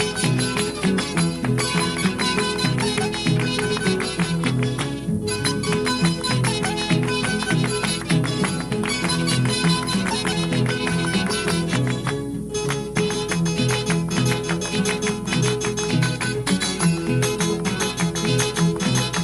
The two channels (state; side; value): identical; both; correlation 1.00